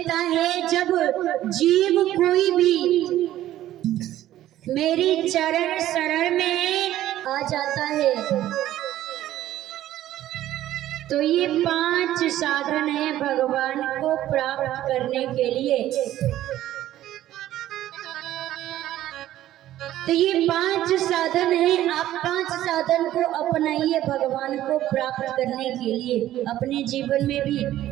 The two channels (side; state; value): left; quieter; 13.5 dB